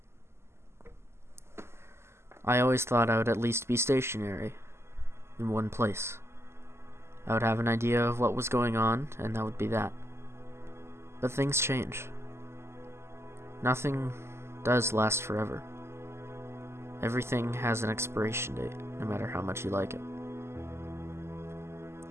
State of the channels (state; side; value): late; left; 0.12 ms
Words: I always thought I would at least be stationary in one place. I would have an idea of what was going on, and that would be that. But things change. Nothing does last forever. Everything has an expiration date, no matter how much you like it.